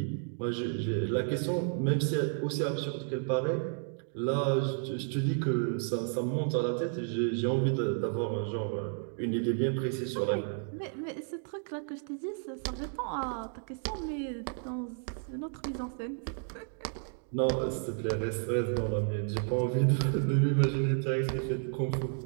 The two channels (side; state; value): left; silent; 56 dB below the other